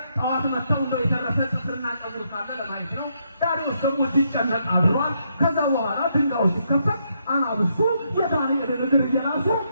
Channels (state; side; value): inverted; both; correlation -0.77